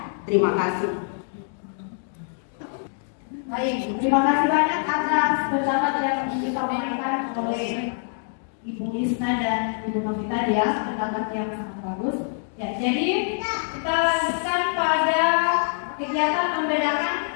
Terima kasih. Baik, terima kasih banyak atas pendapat yang disampaikan oleh Ibu Isna dan Ibu Novita ya, pendapat yang sangat bagus. Ya, jadi kita lanjutkan pada kegiatan membedakan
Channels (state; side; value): silent; right; digital silence